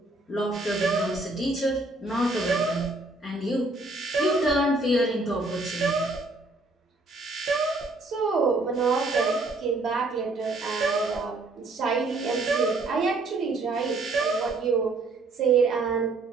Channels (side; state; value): left; quieter; 3.1 dB